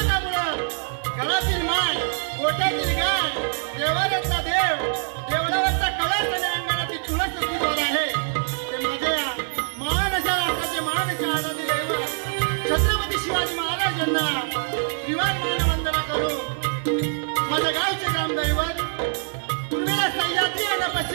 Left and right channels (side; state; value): left; silent; digital silence